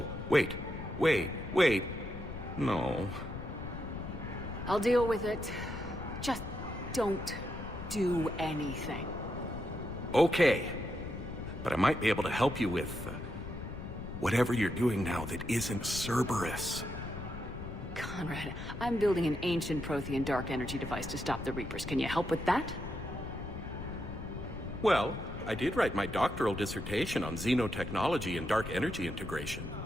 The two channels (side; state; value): left; noise; rumble, 8 dB below the sound